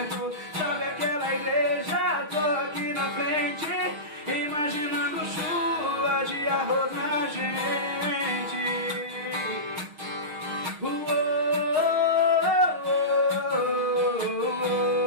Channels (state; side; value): late; left; 6.4 ms